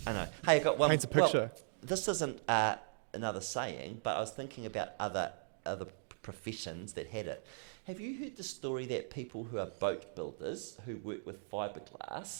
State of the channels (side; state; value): left; silent; digital silence